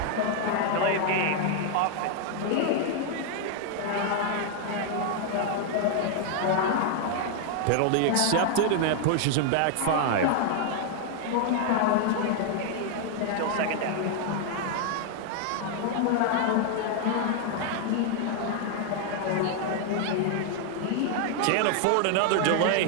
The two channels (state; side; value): different; both; correlation 0.00